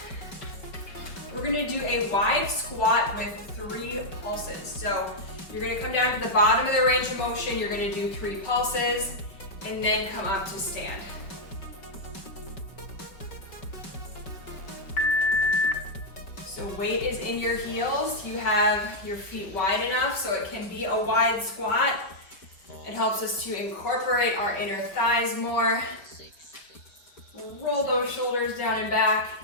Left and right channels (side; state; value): right; late; 5.1 ms